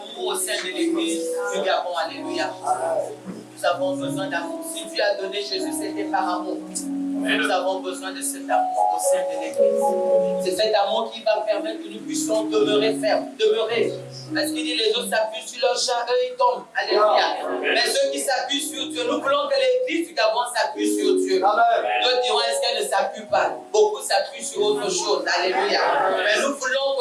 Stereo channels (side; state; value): both; identical; correlation 1.00